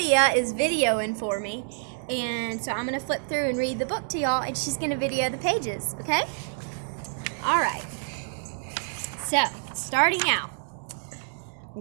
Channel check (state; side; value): silent; left; 60 dB below the other